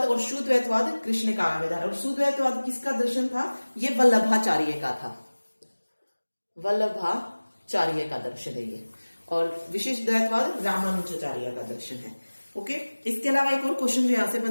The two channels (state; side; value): inverted; both; correlation -1.00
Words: शुद्वैतवाद कृष्ण काव्य धारा। और शुद्वैतवाद किसका दर्शन था, ये वल्लभाचार्य का था। वल्लभाचार्य का दर्शन है ये। और विशिष्ट द्वैतवाद रामानुजाचार्य का दर्शन है। ओके, इसके अलावा एक और क्वेश्चन जो यहां से